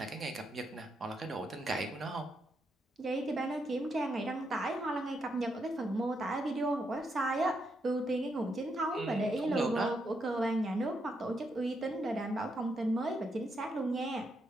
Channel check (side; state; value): both; normal; correlation 0.80